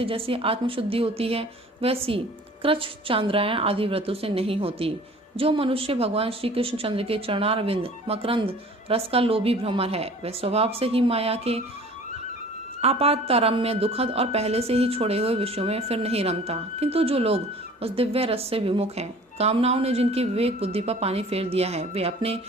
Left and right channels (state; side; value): normal; both; correlation 0.47